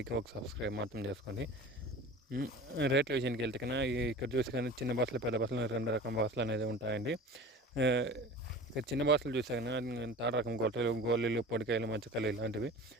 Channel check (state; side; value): normal; both; correlation 0.38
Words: ఒక సబ్స్క్రైబ్ మాత్రం చేసుకోండి. రేట్ల విషయానికి వెళ్తే కన్నా ఇక్కడ చూసి కానీ చిన్న బాసులు, పెద్ద బాసులు, 2 రకం బాసులు అనేది ఉంటాయండి. ఇక్కడ చిన్న బాసులు చూసా కానీ థర్డ్ రకం గోళీలు, పొడికాయలు, మచ్చకాయలు ఇలాంటివి